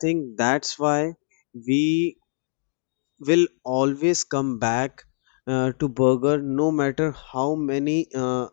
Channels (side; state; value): right; silent; digital silence